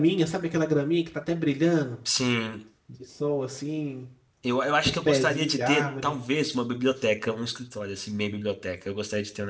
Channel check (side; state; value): both; identical; correlation 1.00